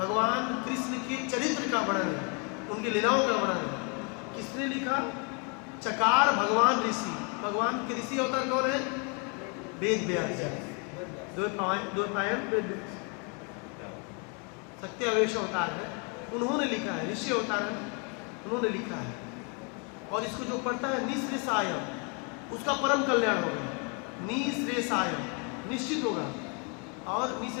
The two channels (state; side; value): quieter; right; 35.3 dB